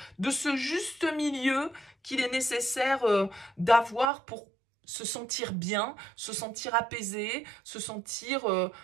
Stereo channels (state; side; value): drops out; left; at 4.1 s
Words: de ce juste milieu qu'il est nécessaire d'avoir pour se sentir bien, se sentir apaisé, se sentir